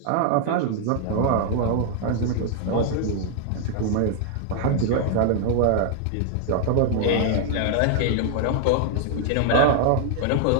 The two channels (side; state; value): both; different; correlation 0.00